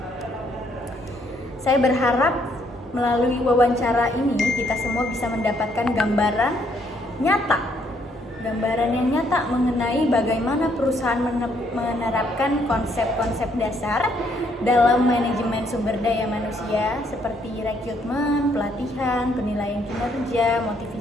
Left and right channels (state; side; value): normal; both; correlation 0.70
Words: Saya berharap melalui wawancara ini kita semua bisa mendapatkan gambaran yang nyata mengenai bagaimana perusahaan menerapkan konsep-konsep dasar dalam manajemen sumber daya manusia seperti rekrutmen, pelatihan, penilaian kinerja,